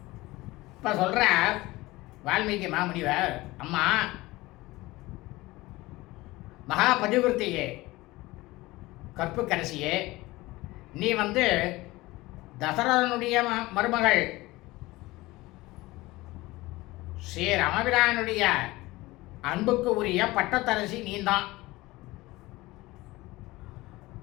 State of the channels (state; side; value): quieter; right; 19.9 dB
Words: இப்போ சொல்கிற வால்மீகி மாமுனிவர், அம்மா மகா பதிவிரத்தையே கற்புக்கரசியே, நீ தசரதனுடைய மருமகள் ஸ்ரீ ராமபிரானுடைய அன்புக்கு உரிய பட்டத்தரசி நீந்தான்.